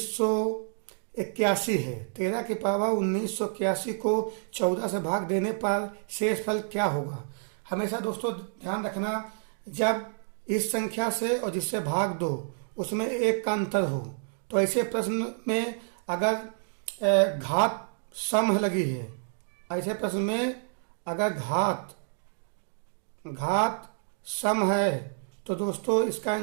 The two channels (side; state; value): left; silent; digital silence